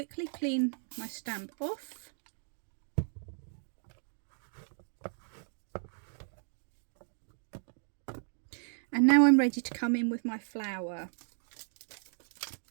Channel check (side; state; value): left; silent; 55 dB below the other